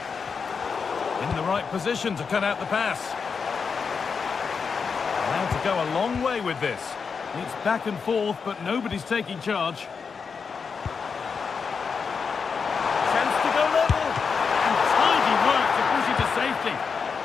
In the right position to cut out the pass. Now to go a long way with this. It's back and forth, but nobody's taking charge. Chance to go level. And tidy work to push it to safety.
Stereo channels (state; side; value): quieter; right; 5.6 dB